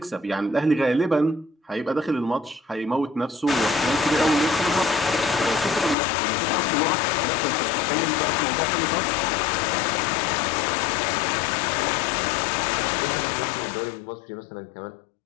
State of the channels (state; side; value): drops out; right; at 6.0 s